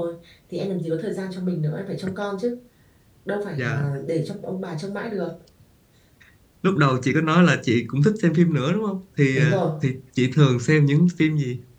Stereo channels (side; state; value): both; identical; correlation 1.00